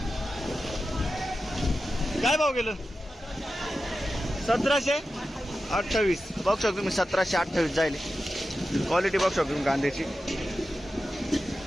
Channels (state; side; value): normal; both; correlation 0.92